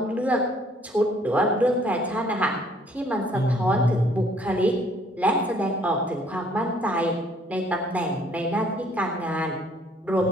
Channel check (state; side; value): normal; both; correlation 0.61